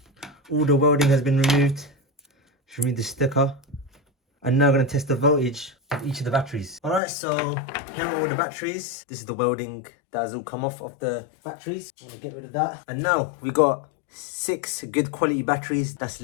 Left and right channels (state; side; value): drops out; right; at 7.0 s